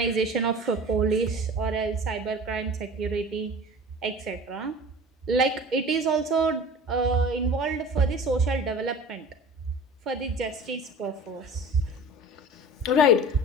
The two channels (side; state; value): both; normal; correlation 0.40